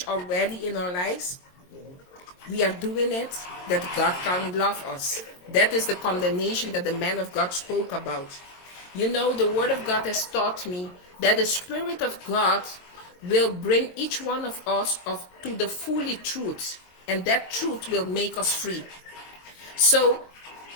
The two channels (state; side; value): late; right; 22 ms